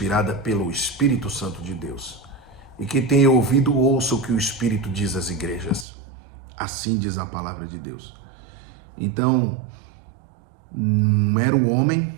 pelo Espírito Santo de Deus. E quem tem ouvido, ouça o que o Espírito diz às igrejas. Assim diz a palavra de Deus. Então, um mero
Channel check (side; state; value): left; drops out; at 5.9 s